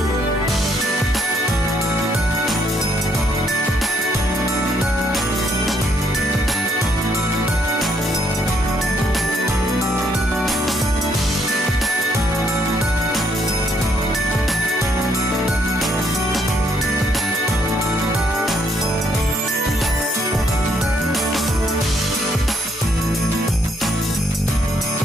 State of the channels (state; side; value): normal; both; correlation 0.72